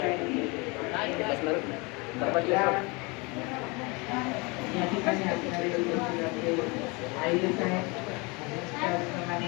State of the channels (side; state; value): right; quieter; 27.6 dB